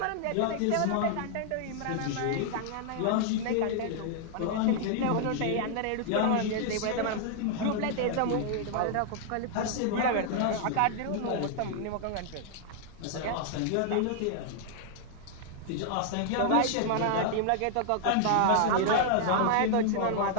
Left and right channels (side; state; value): both; different; correlation -0.01